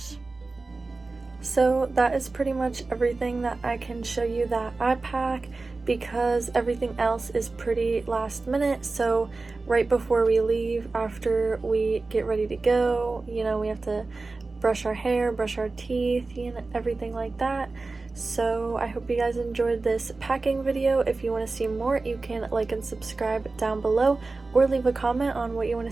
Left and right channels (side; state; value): left; quieter; 3.6 dB